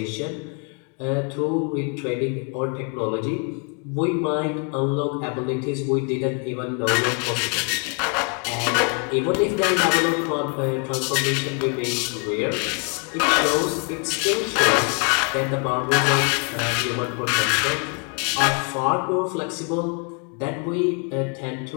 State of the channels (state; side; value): quieter; right; 38.0 dB